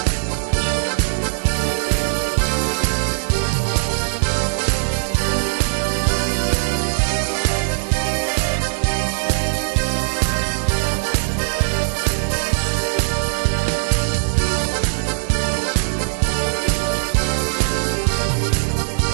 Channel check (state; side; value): silent; left; digital silence